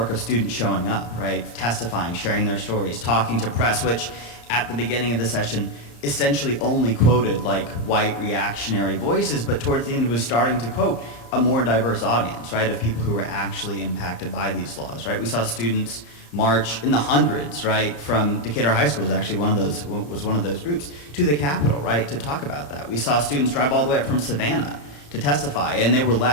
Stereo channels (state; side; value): late; right; 34 ms